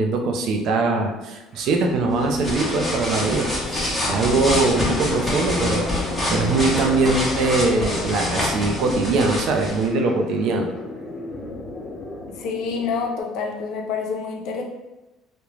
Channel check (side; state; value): both; normal; correlation 0.54